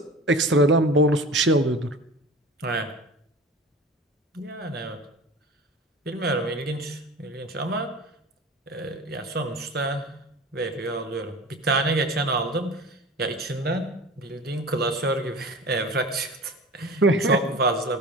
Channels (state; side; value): normal; both; correlation 0.37